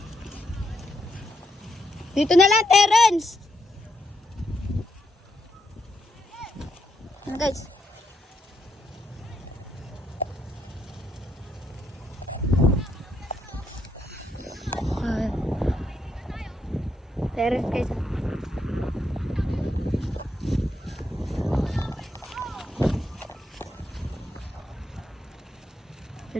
Dito na lang, Terence! Ano guys? Terence guys.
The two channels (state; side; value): normal; both; correlation 0.79